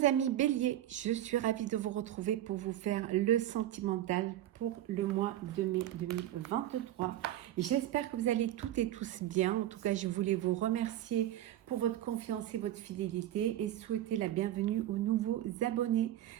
amis Bélier, je suis ravie de vous retrouver pour vous faire le sentimental pour le mois de mai 2023. J'espère que vous allez toutes et tous bien. En tout cas, je voulais vous remercier pour votre confiance et votre fidélité et souhaiter la bienvenue aux nouveaux abonnés.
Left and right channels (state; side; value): quieter; left; 12.9 dB